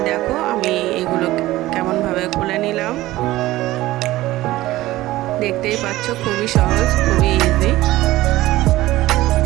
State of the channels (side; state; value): left; quieter; 16.9 dB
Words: দেখো আমি এগুলো কেমনভাবে খুলে নিলাম। দেখতেই পাচ্ছ, খুবই সহজ, খুবই ইজি।